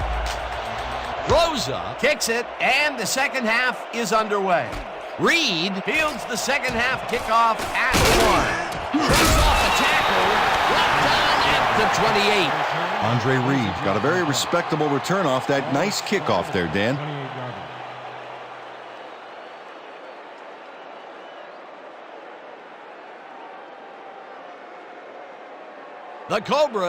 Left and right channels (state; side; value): identical; both; correlation 1.00